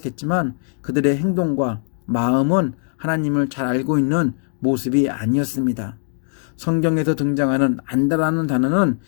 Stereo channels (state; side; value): silent; right; 65 dB below the other